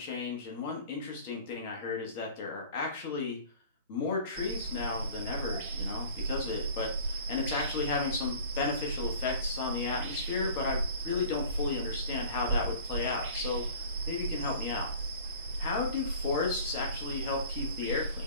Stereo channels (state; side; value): inverted; both; correlation -0.45